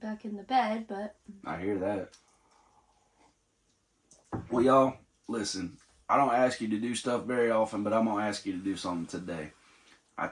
in the bed, but... I hear that. Well, y'all, listen. I don't ask you to do stuff very often, but I'm going to ask you to do something today. I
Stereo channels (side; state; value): both; identical; correlation 1.00